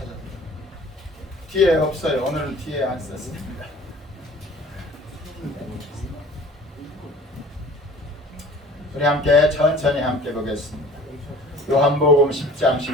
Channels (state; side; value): normal; both; correlation 0.47